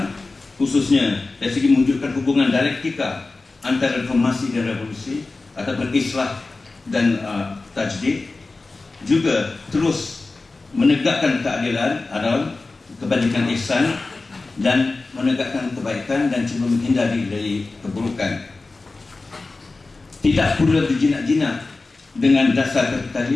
khususnya dari segi mewujudkan hubungan dialektika antara reformasi dan revolusi ataupun islah dan tajdid, juga terus menegakkan keadilan, adalah kebajikan ihsan, dan menegakkan kebaikan dan cuba menghindari dari keburukan. Tidak pula berjinak-jinak dengan dasar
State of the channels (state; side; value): quieter; right; 3.5 dB